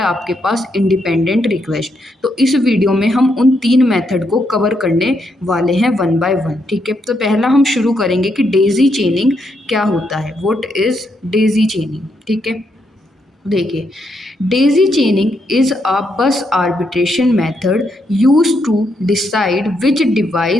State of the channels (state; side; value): normal; both; correlation 0.78